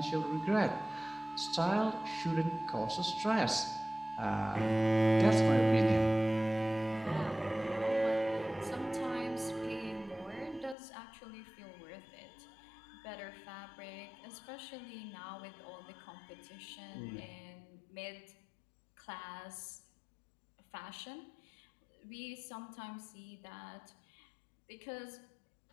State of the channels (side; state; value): right; drops out; at 10.8 s